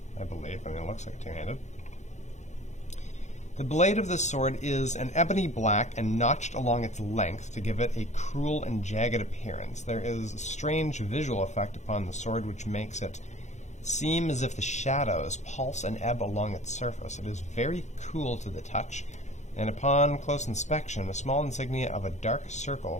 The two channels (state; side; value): late; right; 0.34 ms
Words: I believe. I mean, it looks like a two-handed. The blade of this sword is an ebony black and notched along its length to give it a cruel and jagged appearance. There is a strange visual effect upon the sword which makes it seem as if the shadows pulse and ebb along its surface. It is very cool to the touch, and upon close inspection, a small insignia of a dark